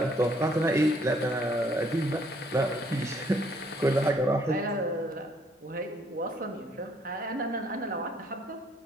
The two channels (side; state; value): both; normal; correlation 0.66